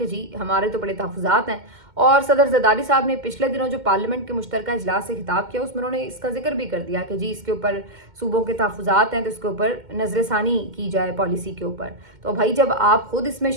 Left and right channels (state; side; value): late; left; 2.1 ms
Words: जी हमारे तो बड़े तहफ़्फ़ुज़ात हैं। और सदर जरदारी साहब ने पिछले दिनों जो पार्लियामेंट के मुश्तरका इजलास से खिताब किया उसमें उन्होंने इसका जिक्र भी कर दिया कि जी इसके ऊपर सूबों के तहफ़्फ़ुज़ात हैं तो इसके ऊपर नज़रसानी की जाए पॉलिसी के ऊपर। तो भाई जब आप खुद इसमें